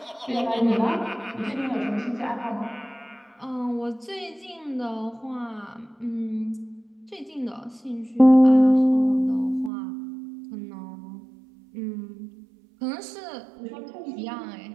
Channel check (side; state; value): left; drops out; at 9.7 s